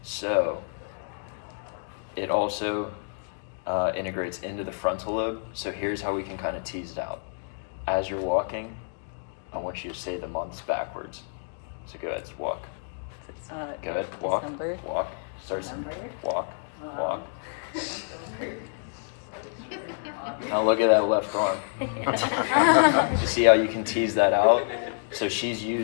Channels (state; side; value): silent; right; digital silence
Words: So it also integrates into the frontal lobe. So here's how we can kind of tease it out. As you're walking, I want you to say the months backwards. So go ahead, walk. Go ahead, walk, walk. Start walk, walk. Now look at that left arm. You see how you can tease that out? So she's